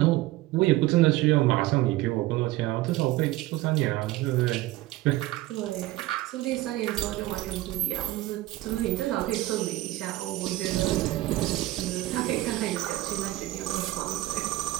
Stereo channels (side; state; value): left; quieter; 17.3 dB